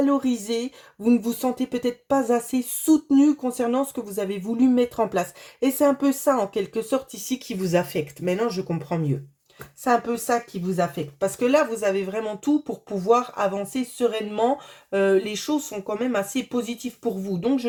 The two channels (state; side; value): identical; both; correlation 1.00